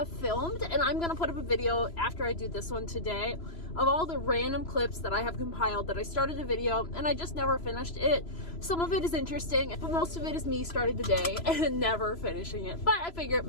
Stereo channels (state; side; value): late; right; 3.0 ms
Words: filmed, and I'm gonna put up a video after I do this one today of all the random clips that I have compiled that I started a video and I just never finished it. Some of it is interesting, but most of it is me starting the day and never finishing it. But I figure